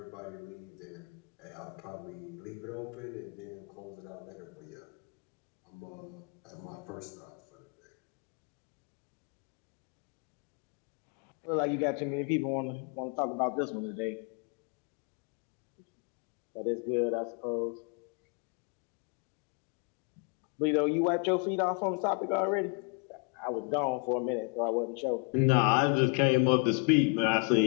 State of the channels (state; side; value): quieter; right; 36.1 dB